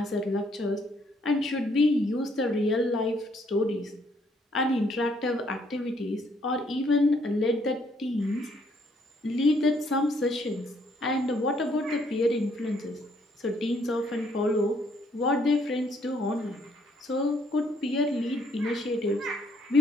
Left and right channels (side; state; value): both; normal; correlation 0.68